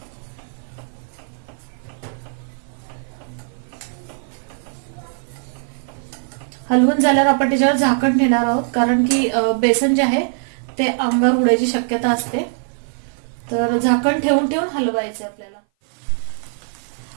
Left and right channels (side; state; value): left; silent; 58 dB below the other